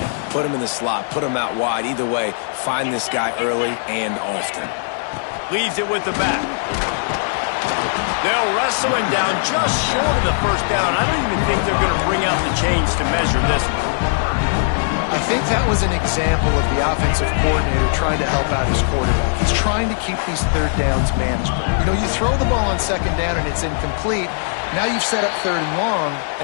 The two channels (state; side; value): silent; right; digital silence